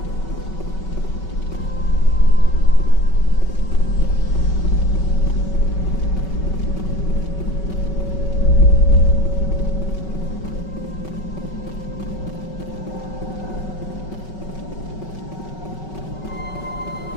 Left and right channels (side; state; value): right; late; 5.3 ms